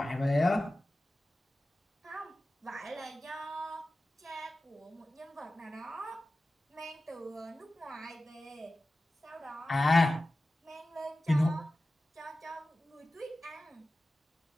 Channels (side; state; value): both; normal; correlation 0.95